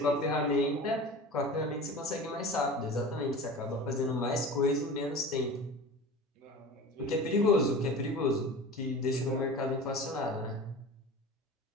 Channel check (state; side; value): normal; both; correlation 0.35